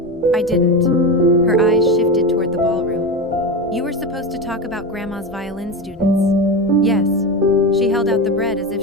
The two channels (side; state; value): both; normal; correlation 0.20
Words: I didn't. Her eyes shifted toward the ballroom. You were supposed to talk about Grandma's violin students. Yes. She held out the bread as if